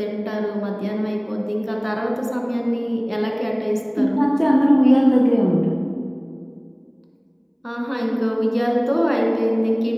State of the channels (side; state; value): both; identical; correlation 1.00